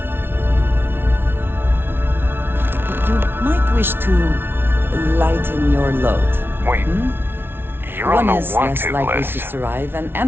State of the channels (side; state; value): left; late; 0.11 ms